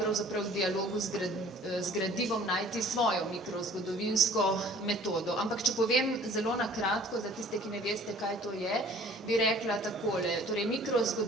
v dialogu z gradivom najti svojo mikrozgodovinsko metodo. Ampak če povem zelo na kratko, za tiste, ki ne veste, kaj to je, bi rekla takole. Torej,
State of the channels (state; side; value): normal; both; correlation 0.51